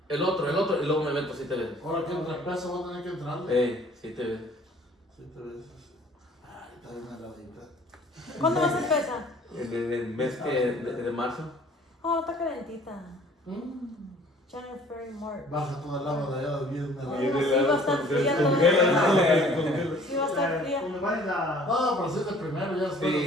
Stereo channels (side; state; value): both; normal; correlation 0.53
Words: el otro, y luego me meto 7 veces. Ahora que entre pesos va a tener que entrarle. 7 veces. 7 veces. Ay, está bien heladita. ¿Cuándo vas a empezar? En el mes de marzo. Oh, está calentita. January, February, March. Baja toda el agua de allá del viernes. Oh, sí va a estar fría toda la Sí va a estar fría. Cuando vayas a... No, pero si es de primero, ya después Sí.